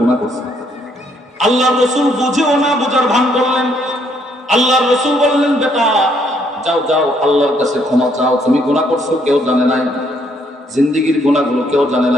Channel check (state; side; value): normal; both; correlation 0.69